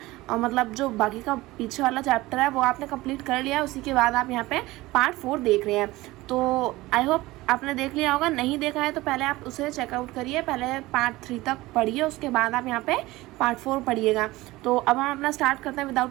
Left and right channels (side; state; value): left; quieter; 19.1 dB